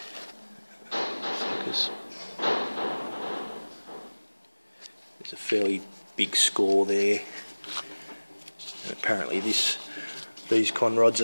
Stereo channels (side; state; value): both; inverted; correlation -1.00